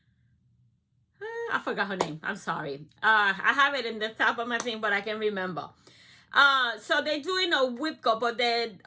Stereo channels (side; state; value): both; identical; correlation 1.00